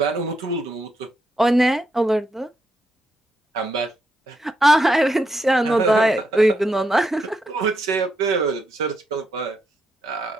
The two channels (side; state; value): both; normal; correlation 0.80